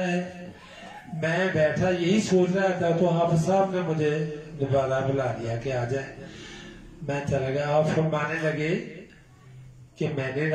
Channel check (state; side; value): identical; both; correlation 1.00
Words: ہے. میں بیٹھا یہی سوچ رہا تھا تو حافظ صاحب نے مجھے دوبارہ بلا لیا کہ آ جائے. میں چلا گیا. آپ فرمانے لگے کہ میں نے